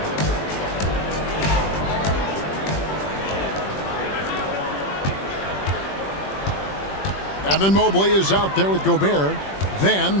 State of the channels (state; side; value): late; right; 21 ms